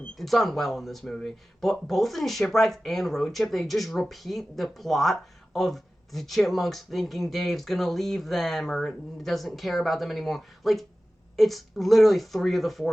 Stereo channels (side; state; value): both; normal; correlation 0.96